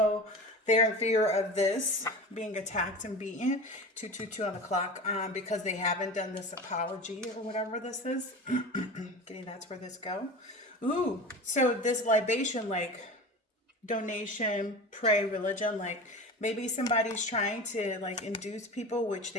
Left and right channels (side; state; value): both; normal; correlation 0.32